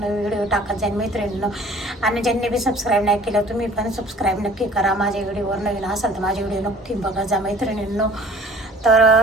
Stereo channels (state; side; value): normal; both; correlation 0.50